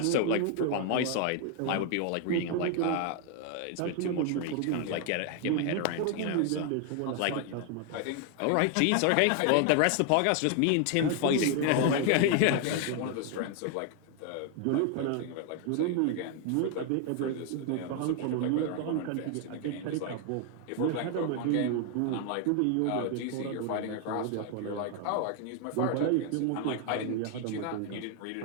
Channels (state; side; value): different; both; correlation 0.01